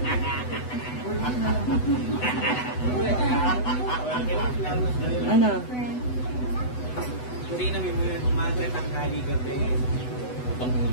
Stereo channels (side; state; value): right; late; 8.0 ms